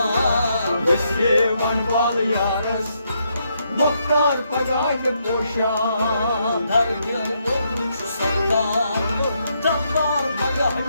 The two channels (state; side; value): inverted; both; correlation -0.77